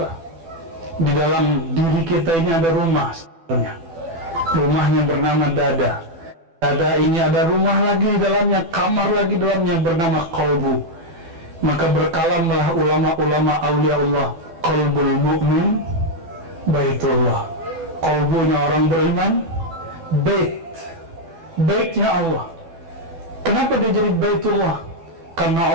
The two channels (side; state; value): left; late; 12 ms